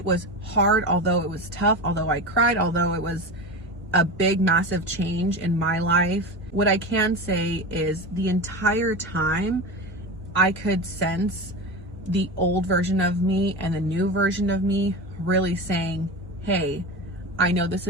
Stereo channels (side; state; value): both; normal; correlation 0.25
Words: was hard, although it was tough, although I cried, although it was a big, massive change in my life, what I can say is the entire time I could sense the old version of me and the new version of me really saying, hey, I know this